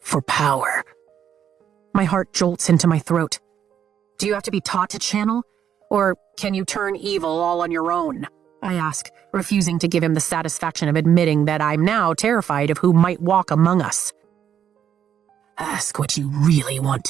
power? My heart jolts into my throat. Do you have to be taught to channel? Or can you turn evil all on your own? I ask, refusing to give him the satisfaction of admitting that I'm now terrified of who might walk among us. Ask what you really want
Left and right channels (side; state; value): left; quieter; 9.0 dB